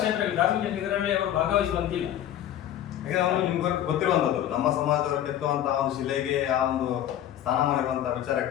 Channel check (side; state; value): right; quieter; 11.4 dB